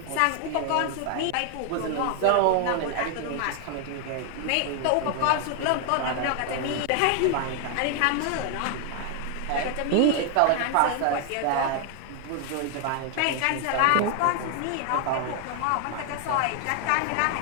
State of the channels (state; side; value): different; both; correlation 0.00